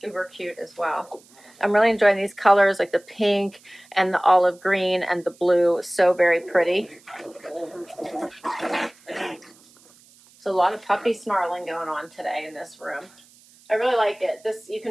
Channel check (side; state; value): right; noise; hiss, 27 dB below the sound